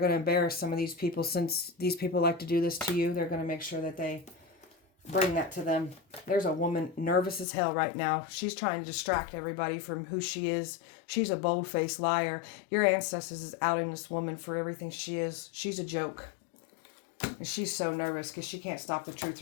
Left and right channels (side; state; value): right; drops out; at 7.5 s